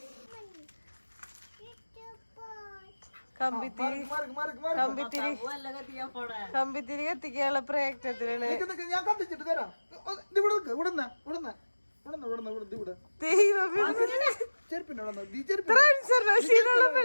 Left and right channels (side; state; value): both; inverted; correlation -1.00